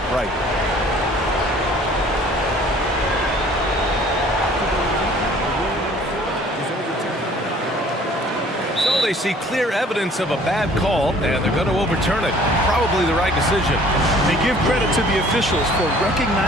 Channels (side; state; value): both; normal; correlation 0.53